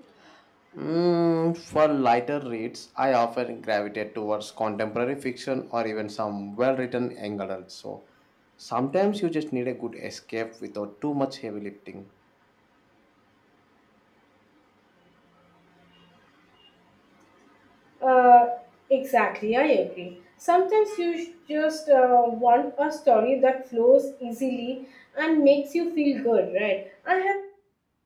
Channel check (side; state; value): both; identical; correlation 1.00